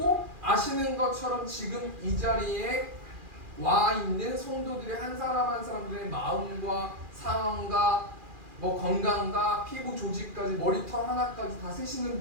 아시는 것처럼 지금 이 자리에 와 있는 성도들의 한 사람 한 사람들의 마음과 상황과 뭐 건강과 피부 조직까지 머리털 하나까지 다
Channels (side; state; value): left; late; 2.4 ms